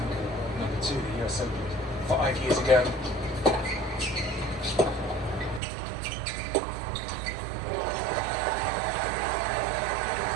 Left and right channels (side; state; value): left; drops out; at 5.6 s